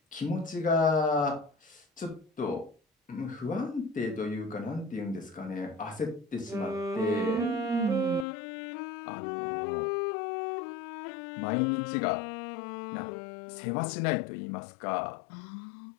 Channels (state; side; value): drops out; right; at 8.2 s